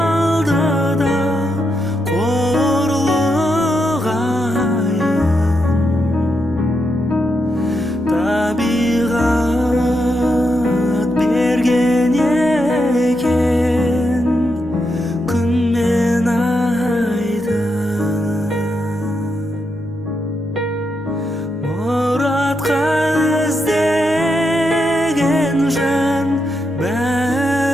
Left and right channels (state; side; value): normal; both; correlation 0.83